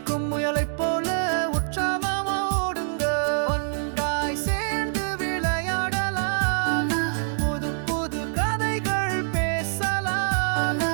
முயலைப் போல உற்சாகமா ஓடுங்க. ஒன்றாய் சேர்ந்து விளையாடலாம், புது புது கதைகள் பேசலாம்,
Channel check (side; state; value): left; silent; digital silence